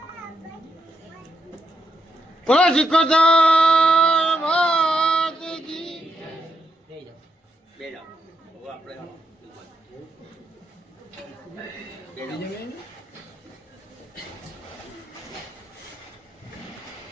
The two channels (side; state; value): both; normal; correlation 0.81